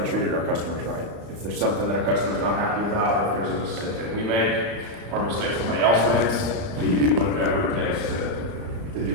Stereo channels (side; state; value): left; late; 35 ms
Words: treated our customers right. If there's something that a customer's not happy about, if there's a mistake that we make or a mistake somebody else makes, we do whatever it takes to do